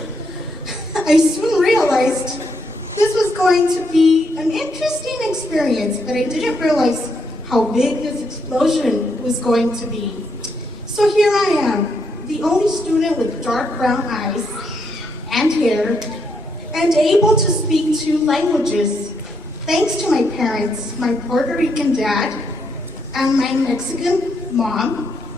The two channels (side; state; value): both; normal; correlation 0.77